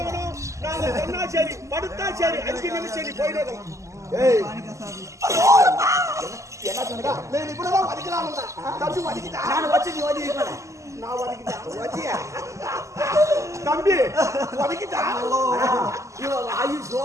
நாங்க சொன்னா சரி, படுத்தா சரி, 5 நிமிஷம் சரி போயிடுறோம். என்ன சொன்னா இப்படிதான் வதிக்கலாம். தம்பி வதிக்கிட்டா நான் வச்சு நீ வதிக்க நான் வதிக்கிட்டேன் தம்பி வதிக்கிட்டா. வாயு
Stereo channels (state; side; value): late; left; 0.15 ms